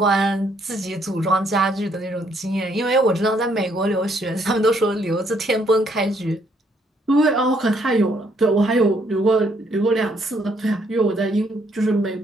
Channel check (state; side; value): normal; both; correlation 0.69